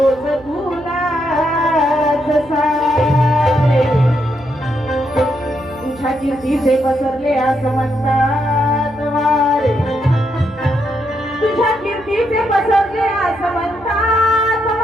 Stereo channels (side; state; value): right; noise; hum, 23 dB below the sound